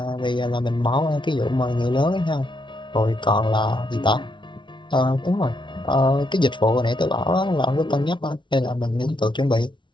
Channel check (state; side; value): late; right; 0.24 ms